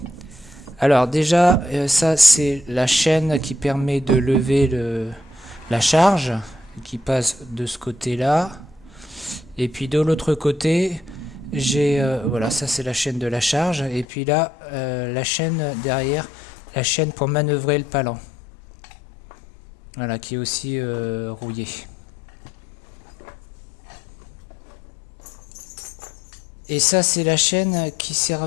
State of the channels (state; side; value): drops out; right; at 14.1 s